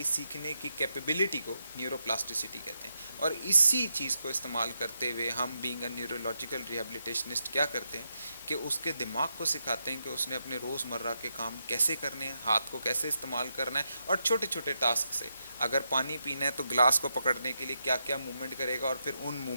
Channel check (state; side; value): inverted; both; correlation -0.84